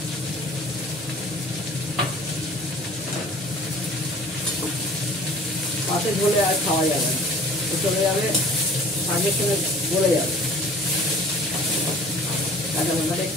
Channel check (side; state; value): both; normal; correlation 0.48